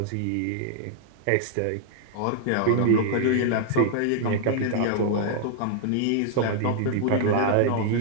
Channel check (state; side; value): different; both; correlation 0.00